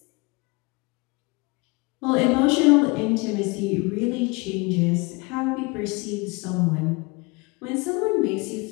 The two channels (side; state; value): right; quieter; 27.2 dB